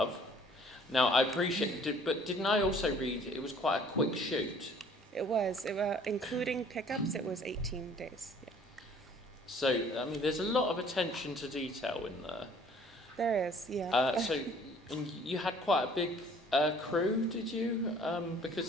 Now, I appreciate, but didn't I also read it was quite a quick shoot? It was, including pickups, it was 18 days. Yeah. So, I mean, there's a lot of attention to detail in there. There is, yeah. And you had quite a big crew, did you?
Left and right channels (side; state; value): both; normal; correlation 0.55